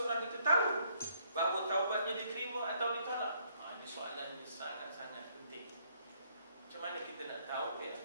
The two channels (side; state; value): both; inverted; correlation -0.68